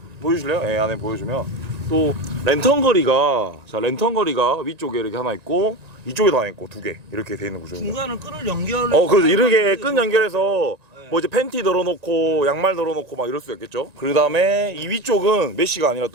보여주실래요? 예, 안에 보여주면 또 랜턴 거리가 위쪽에 이렇게 하나 있고 이쪽에도 하나 있고 두 개 이렇게 돼 있는 구조입니다. 중간은 끈을 연결. 그래서 이렇게 끈 연결해서 뭐 이제 팬티 널어놓고 양말 널어놓고 막 이럴 수 있겠죠. 그 다음에 이 위쪽은 메쉬가 아니라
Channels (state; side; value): late; left; 1.9 ms